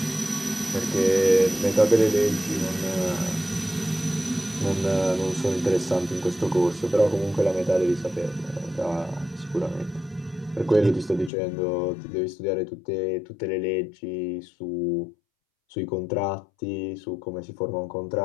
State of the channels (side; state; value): right; drops out; at 11.3 s